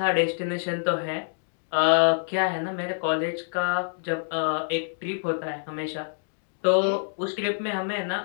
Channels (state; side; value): silent; right; digital silence